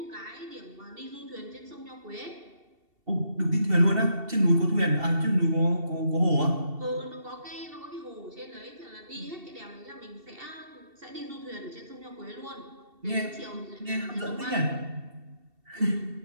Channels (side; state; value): left; late; 2.7 ms